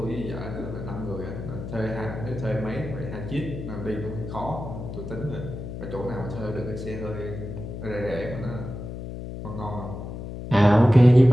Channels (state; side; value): noise; left; hum, 8 dB below the sound